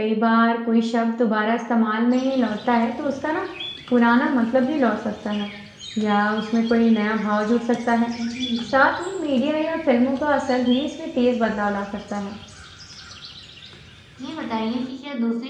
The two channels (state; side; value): identical; both; correlation 1.00